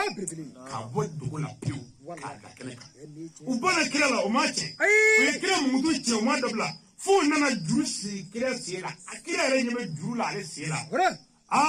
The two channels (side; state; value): both; identical; correlation 1.00